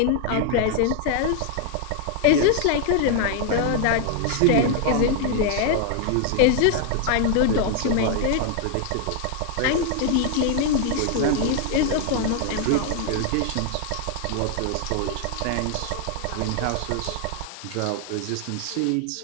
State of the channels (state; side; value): different; both; correlation 0.00